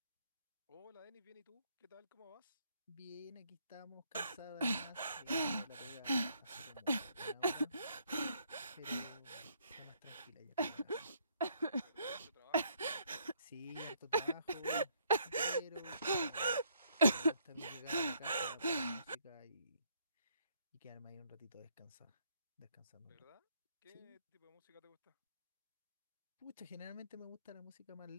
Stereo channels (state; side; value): inverted; both; correlation -0.68